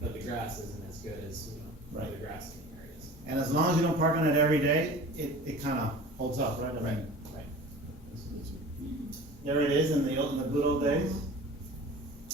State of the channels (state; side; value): normal; both; correlation 0.40